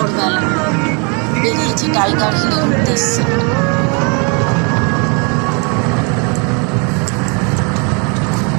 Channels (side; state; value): left; quieter; 34.1 dB